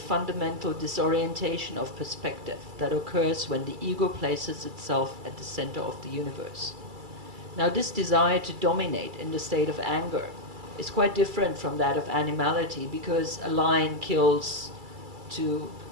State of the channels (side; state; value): left; late; 2.3 ms